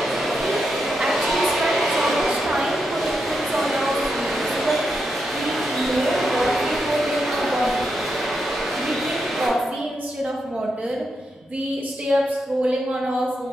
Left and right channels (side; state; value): both; normal; correlation 0.84